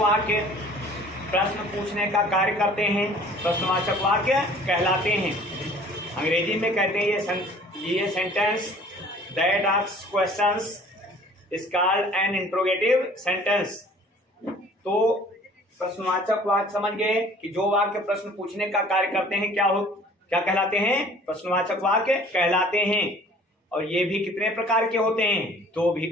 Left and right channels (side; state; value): both; normal; correlation 0.51